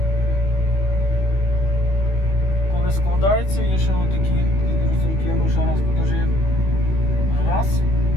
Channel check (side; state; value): right; late; 16 ms